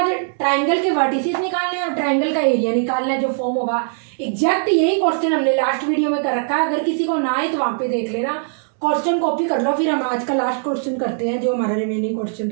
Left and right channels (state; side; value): silent; left; 66 dB below the other